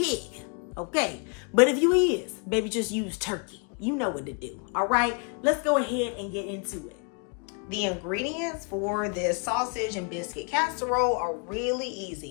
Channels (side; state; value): right; quieter; 36.5 dB